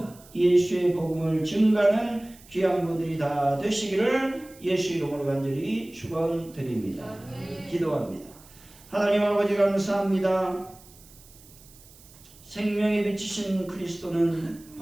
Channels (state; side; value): noise; right; hiss, 24 dB below the sound